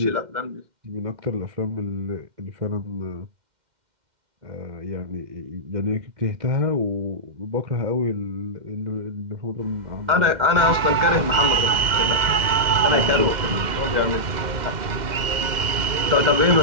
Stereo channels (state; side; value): late; left; 2.1 ms